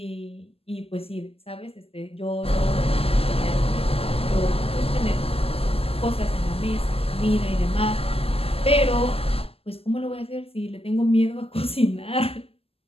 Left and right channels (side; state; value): right; late; 0.28 ms